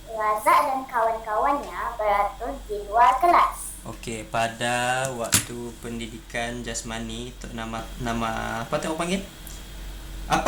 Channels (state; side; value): identical; both; correlation 1.00